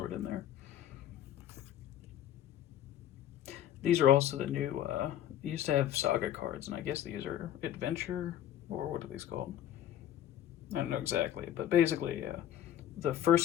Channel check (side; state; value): right; quieter; 11.1 dB